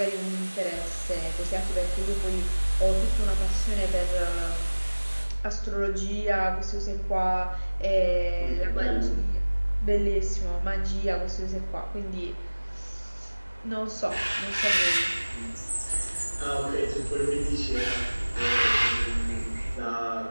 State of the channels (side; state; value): both; inverted; correlation -1.00